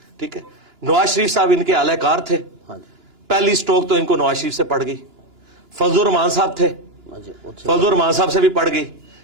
ठीक है। नवाज शरीफ साहब इनके आलाकार थे, पहली स्ट्रोक तो इनको नवाज शरीफ से पड़ गई। फजलुर रहमान साहब थे, फजलुर रहमान साहब से भी पड़ गई।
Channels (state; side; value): late; left; 2.9 ms